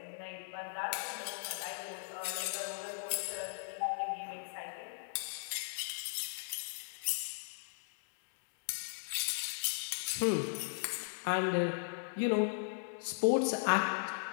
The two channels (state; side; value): silent; right; digital silence